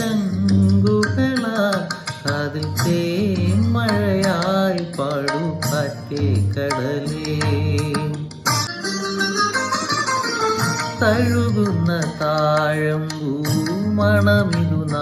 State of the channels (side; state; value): both; identical; correlation 1.00